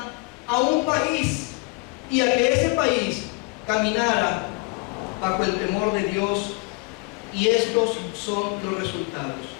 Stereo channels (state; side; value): quieter; right; 28.4 dB